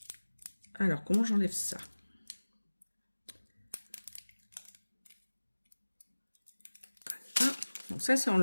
Alors, comment j'enlève ça? Voilà. Donc ça, c'est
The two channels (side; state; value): both; inverted; correlation -1.00